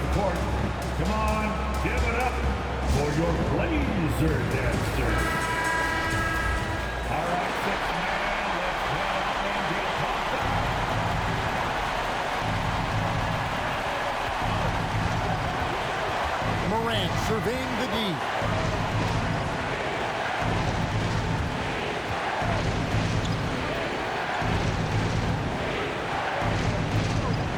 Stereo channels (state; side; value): identical; both; correlation 1.00